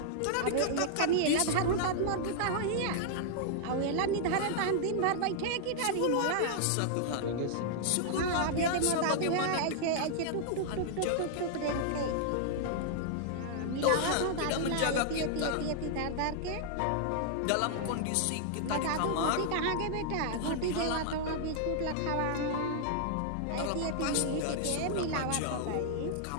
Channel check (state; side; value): different; both; correlation -0.01